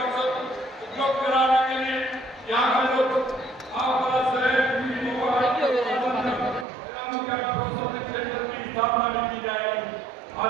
अवसर उपलब्ध कराने के लिए यहाँ का जो आपका शहर स्थापना भी की जाएगी।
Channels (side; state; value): left; drops out; at 6.7 s